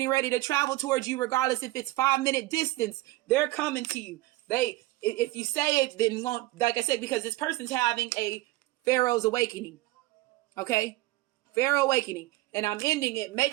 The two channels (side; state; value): left; quieter; 18.7 dB